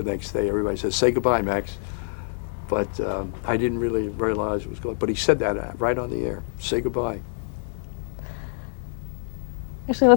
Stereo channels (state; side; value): silent; right; 60 dB below the other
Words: next day. Everybody says, "Say goodbye, Max." But I didn't really realize it was going. But he said that right on the air. "Say goodbye." Actually,